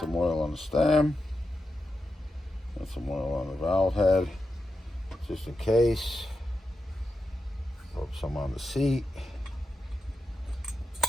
oil on the stem. And some oil on the valve head. Just in case. Rub some on the seat.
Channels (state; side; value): normal; both; correlation 0.88